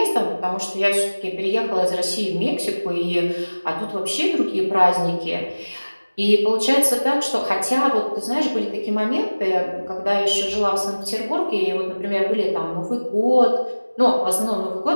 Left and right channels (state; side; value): inverted; both; correlation -1.00